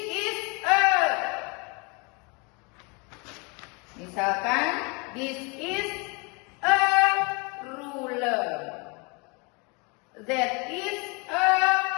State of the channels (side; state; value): right; quieter; 30.7 dB